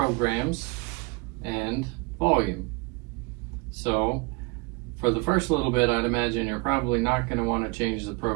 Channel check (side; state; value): left; quieter; 27.0 dB